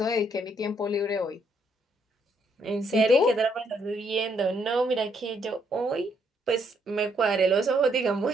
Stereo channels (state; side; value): normal; both; correlation 0.72